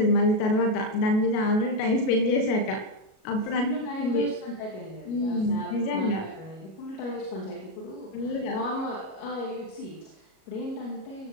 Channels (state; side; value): late; right; 37 ms